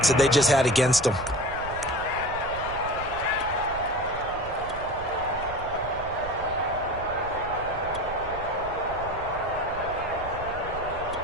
that they just had against them.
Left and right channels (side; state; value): right; noise; rumble, 13 dB below the sound